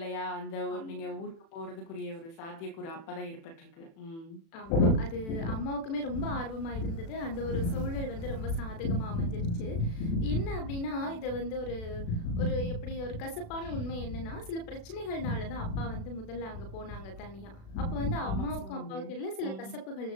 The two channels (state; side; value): late; right; 36 ms